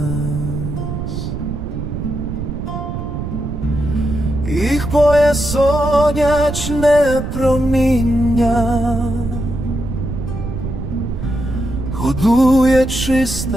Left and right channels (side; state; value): right; noise; rumble, 5 dB below the sound